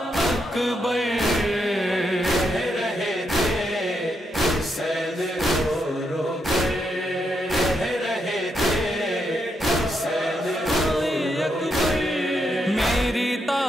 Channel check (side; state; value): both; normal; correlation 0.81